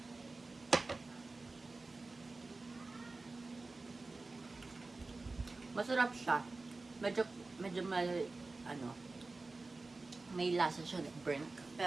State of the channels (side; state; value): left; quieter; 3.5 dB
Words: Masarap siya. Medyo may lasa siya ng burnt.